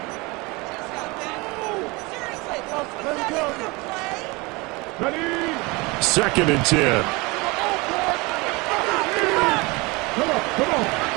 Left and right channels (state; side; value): quieter; left; 25.2 dB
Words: Second and 10.